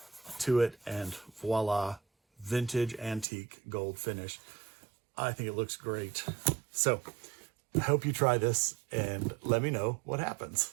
to it, and voila, vintage antique gold finish. I think it looks great. So I hope you try this and let me know what happens.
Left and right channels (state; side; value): drops out; left; at 3.2 s